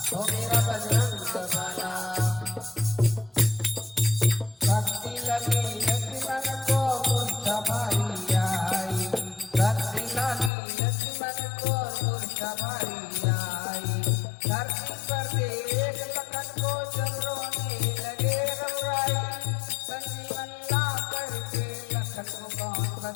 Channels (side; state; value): right; drops out; at 10.5 s